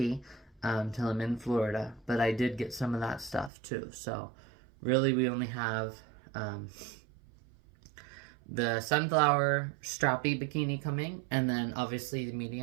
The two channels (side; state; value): left; drops out; at 3.5 s